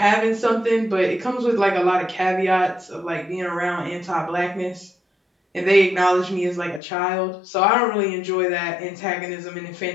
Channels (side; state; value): right; drops out; at 6.8 s